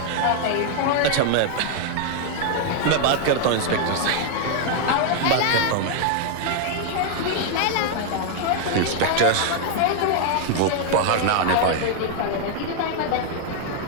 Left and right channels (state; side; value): different; both; correlation 0.00